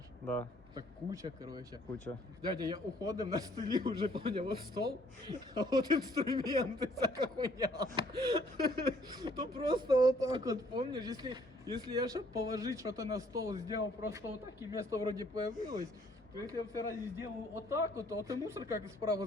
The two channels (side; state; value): both; normal; correlation 0.62